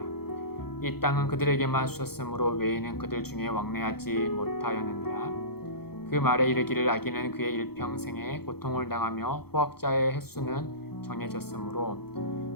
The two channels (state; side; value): late; right; 0.96 ms